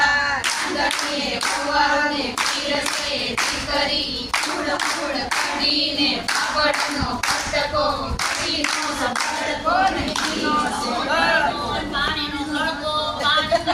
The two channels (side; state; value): both; identical; correlation 1.00